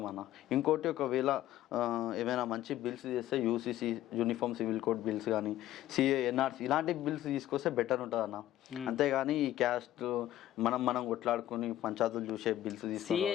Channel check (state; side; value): quieter; right; 13.5 dB